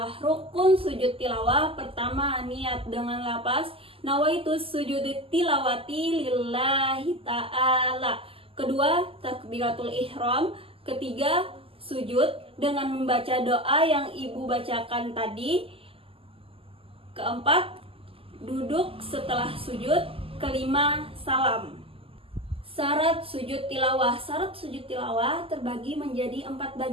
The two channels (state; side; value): late; left; 0.27 ms